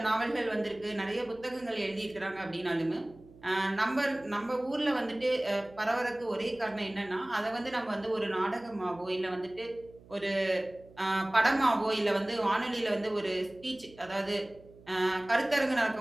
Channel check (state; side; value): noise; right; hum, 23 dB below the sound